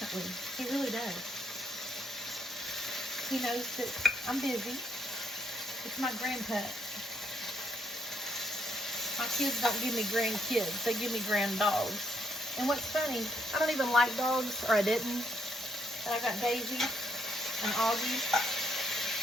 He really does. He knows that I'm busy. It's my grandpa. My kids don't give me grandkids. They give me grand dogs. And what's funny, I don't even like dogs, or I didn't. But I got Daisy and Augie.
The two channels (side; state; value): both; normal; correlation 0.74